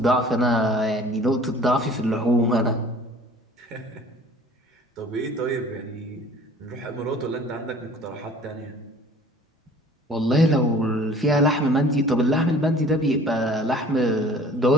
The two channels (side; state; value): both; normal; correlation 0.49